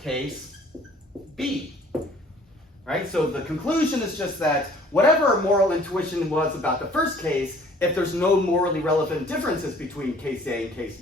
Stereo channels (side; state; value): both; normal; correlation 0.54